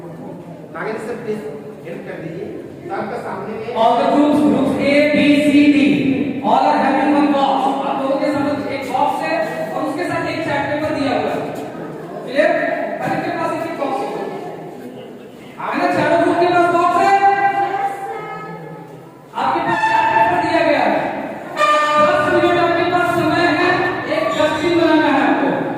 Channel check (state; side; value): identical; both; correlation 1.00